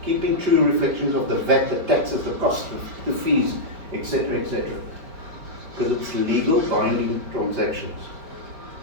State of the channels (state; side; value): late; left; 4.7 ms